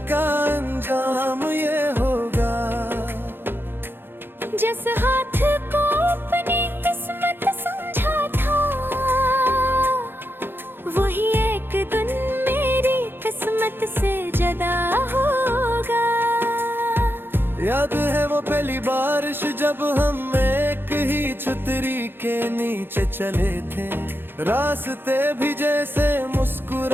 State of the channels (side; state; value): left; late; 0.10 ms